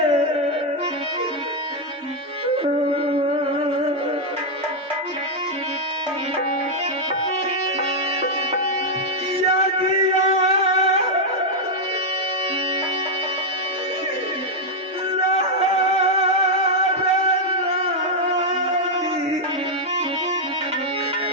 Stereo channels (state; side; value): normal; both; correlation -0.01